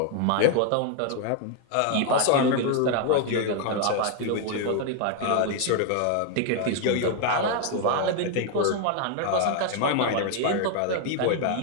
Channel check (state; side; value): different; both; correlation 0.00